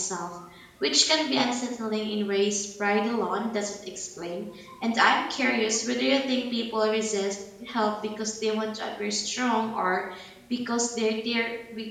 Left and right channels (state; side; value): identical; both; correlation 1.00